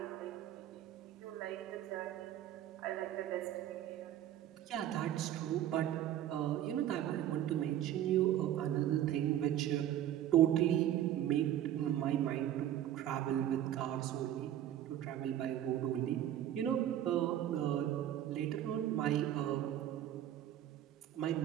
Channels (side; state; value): left; quieter; 11.7 dB